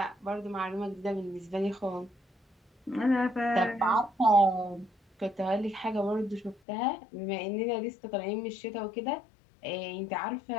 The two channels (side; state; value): right; drops out; at 6.6 s